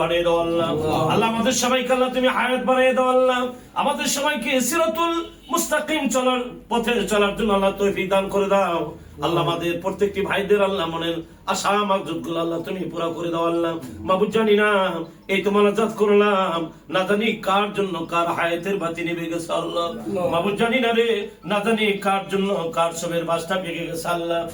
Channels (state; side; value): identical; both; correlation 1.00